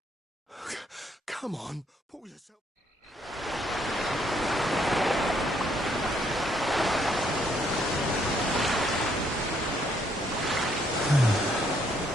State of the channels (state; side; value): normal; both; correlation 0.70